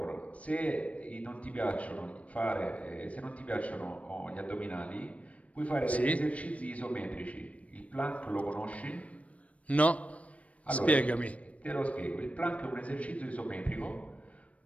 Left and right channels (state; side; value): late; right; 0.065 ms